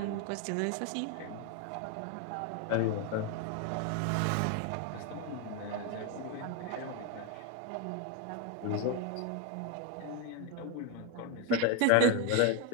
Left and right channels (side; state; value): both; different; correlation 0.01